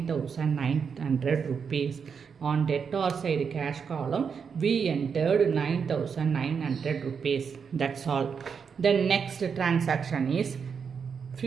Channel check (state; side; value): quieter; left; 6.3 dB